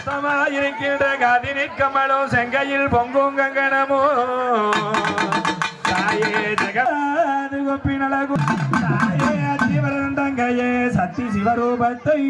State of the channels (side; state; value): both; identical; correlation 1.00